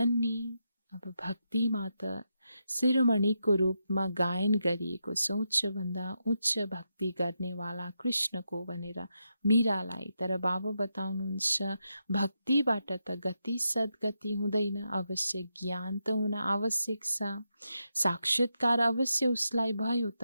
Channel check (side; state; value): both; inverted; correlation -0.85